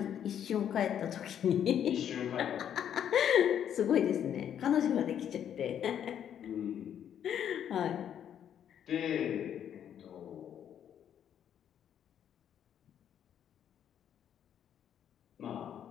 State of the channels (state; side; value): quieter; right; 9.4 dB